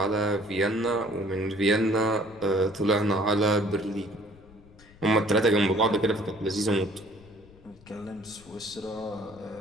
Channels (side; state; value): left; noise; rumble, 24 dB below the sound